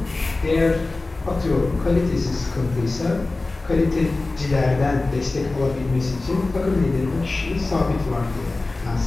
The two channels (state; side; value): quieter; right; 3.3 dB